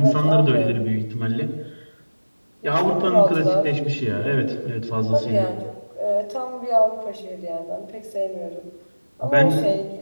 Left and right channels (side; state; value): both; inverted; correlation -1.00